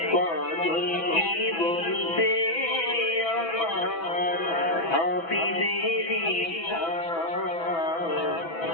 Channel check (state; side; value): late; right; 6.0 ms